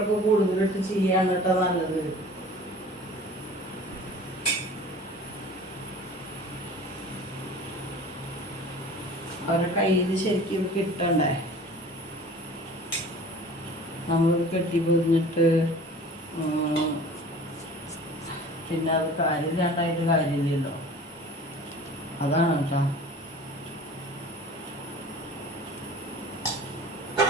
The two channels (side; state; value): both; normal; correlation 0.43